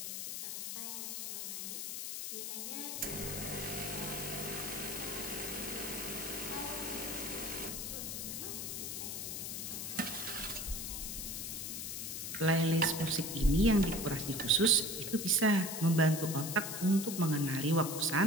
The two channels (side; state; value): left; noise; hiss, 4 dB below the sound